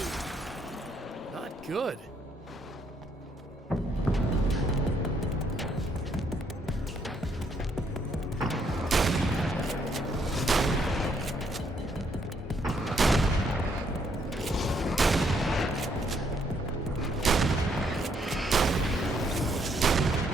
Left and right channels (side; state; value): both; normal; correlation 0.71